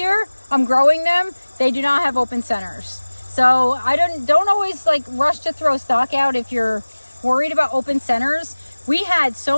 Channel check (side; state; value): both; inverted; correlation -1.00